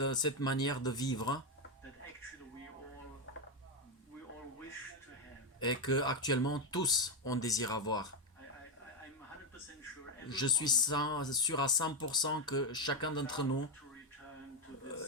cette manière de vivre that actually we all wish to have. et que actuellement tous on désire avoir. I'm 100% sure Je suis sûr à 100% que chacun d'entre nous to return to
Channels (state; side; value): normal; both; correlation 0.06